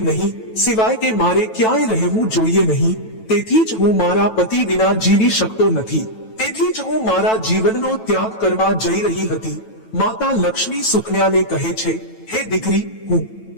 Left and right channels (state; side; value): late; right; 9.1 ms